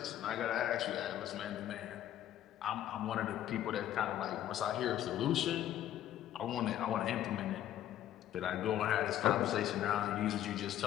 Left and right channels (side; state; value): right; quieter; 11.8 dB